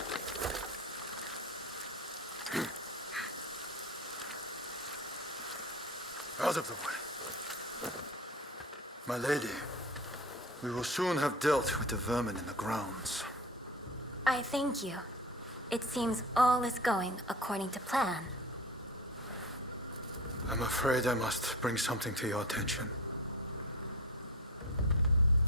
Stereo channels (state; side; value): normal; both; correlation 0.32